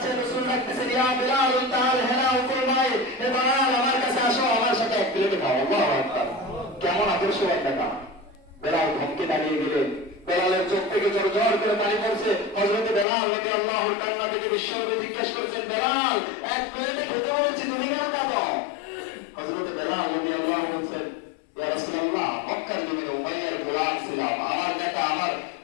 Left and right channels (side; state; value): right; drops out; at 13.1 s